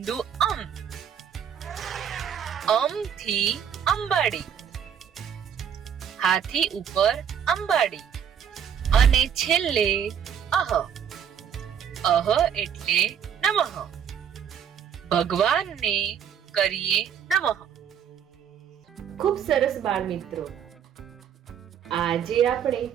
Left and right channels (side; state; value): left; quieter; 8.3 dB